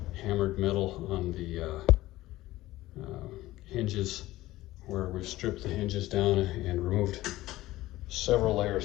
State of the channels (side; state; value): right; quieter; 16.9 dB